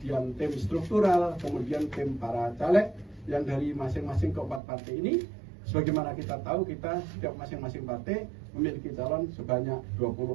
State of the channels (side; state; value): left; drops out; at 4.6 s